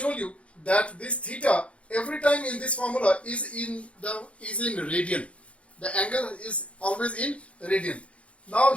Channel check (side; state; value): right; late; 0.062 ms